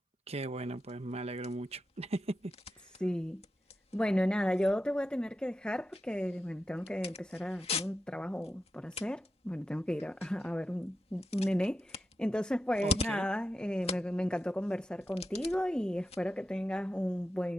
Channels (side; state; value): both; normal; correlation 0.89